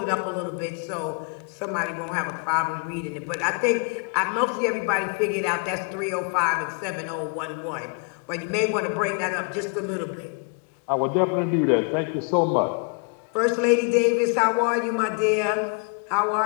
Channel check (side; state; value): right; quieter; 36.7 dB